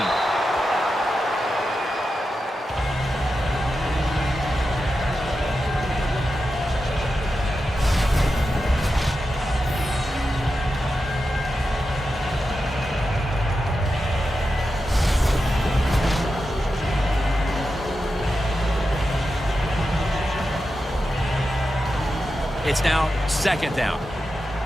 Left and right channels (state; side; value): normal; both; correlation 0.90